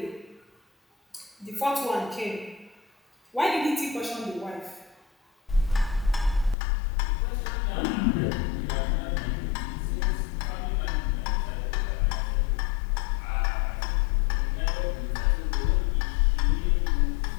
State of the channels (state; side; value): drops out; right; at 6.6 s